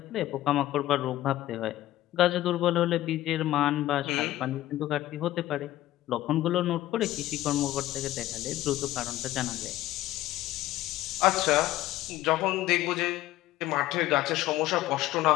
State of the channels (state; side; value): quieter; right; 15.2 dB